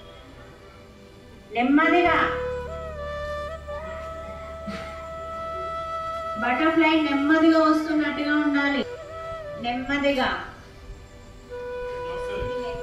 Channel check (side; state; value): both; identical; correlation 1.00